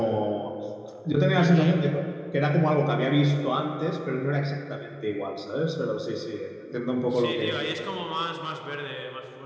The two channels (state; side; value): identical; both; correlation 1.00